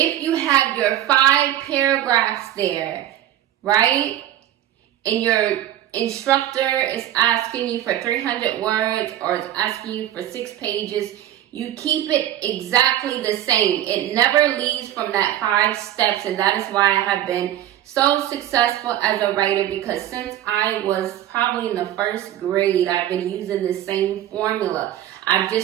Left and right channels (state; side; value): quieter; left; 12.4 dB